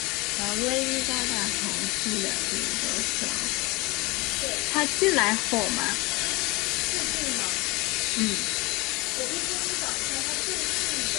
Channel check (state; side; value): quieter; right; 24.3 dB